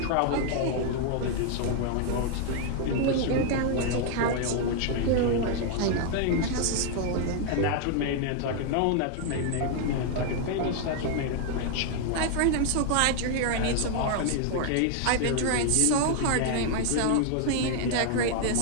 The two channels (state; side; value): different; both; correlation 0.00